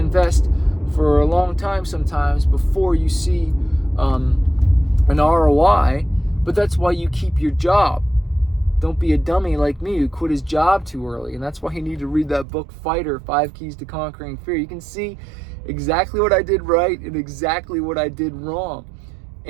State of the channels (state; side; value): drops out; left; at 12.5 s